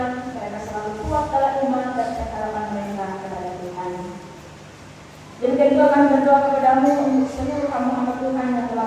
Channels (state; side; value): identical; both; correlation 1.00